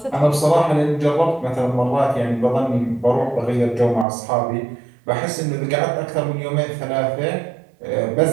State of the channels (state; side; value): drops out; left; at 4.0 s